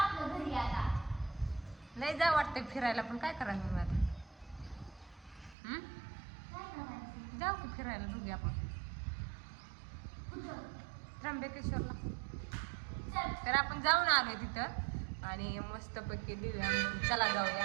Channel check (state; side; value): drops out; left; at 5.6 s